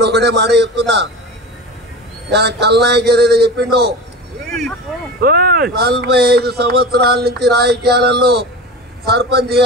ఒకటే మాట చెప్తున్నా, కల్నాయక్ ఏదైతే చెప్పిండో 45 సంవత్సరాల నుంచి రాజకీయాలలో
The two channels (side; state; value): both; normal; correlation 0.30